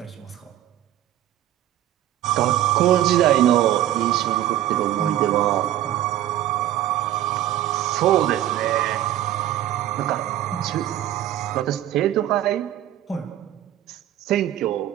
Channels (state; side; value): quieter; left; 12.8 dB